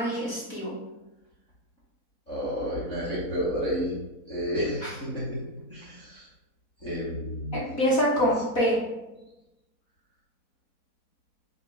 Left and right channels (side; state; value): right; late; 4.1 ms